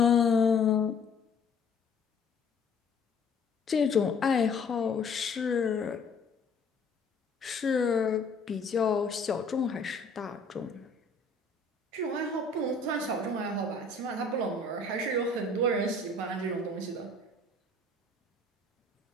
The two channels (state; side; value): quieter; right; 3.6 dB